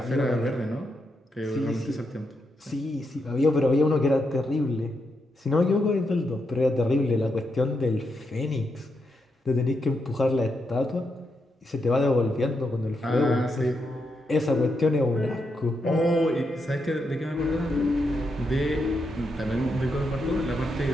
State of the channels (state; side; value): normal; both; correlation 0.82